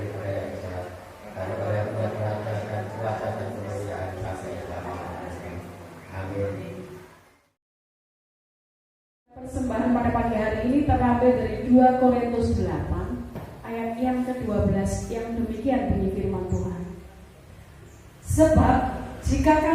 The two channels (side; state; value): both; identical; correlation 1.00